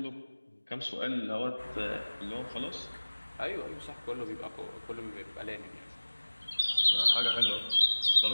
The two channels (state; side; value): inverted; both; correlation -1.00